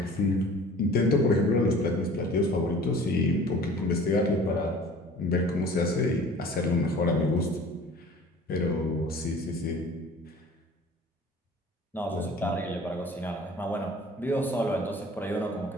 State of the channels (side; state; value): both; normal; correlation 0.46